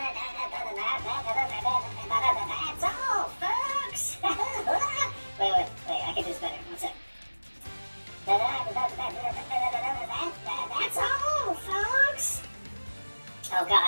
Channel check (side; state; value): both; inverted; correlation -1.00